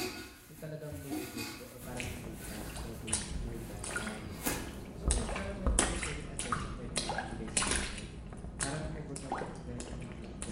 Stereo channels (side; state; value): both; identical; correlation 1.00